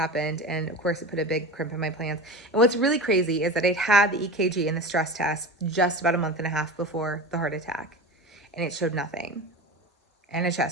And of course, it put a big crimp in my plans. And what's really crazy is that I'd had the EKG and the stress test just about a month and a half before the heart attack. And it showed nothing. And a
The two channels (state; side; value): normal; both; correlation 0.29